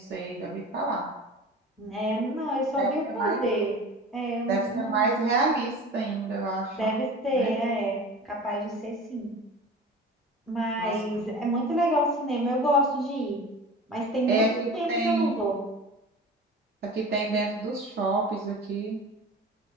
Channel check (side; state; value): both; normal; correlation 0.36